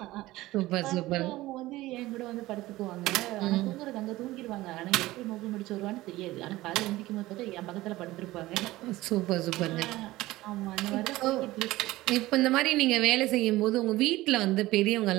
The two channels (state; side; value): quieter; left; 17.8 dB